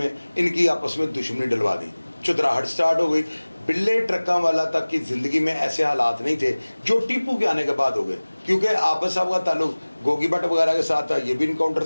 इनकी आपस में दुश्मनी डलवा दी, चुतराहट स्टार्ट हो गई। बिल्ले ट्रक्का वाला तक की ज़िंदगी में ऐसे हालात नहीं थे जो टीपू के आने के बाद हो गए, क्योंकि आबद साहब का ताल्लुक गोगी भट्ट वगैरह के साथ था, ये भी इनकाउंटर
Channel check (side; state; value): both; inverted; correlation -1.00